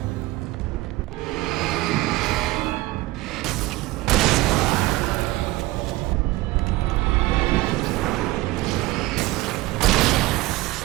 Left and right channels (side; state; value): left; quieter; 19.0 dB